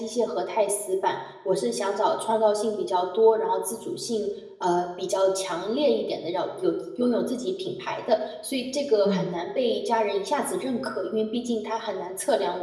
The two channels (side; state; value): both; identical; correlation 1.00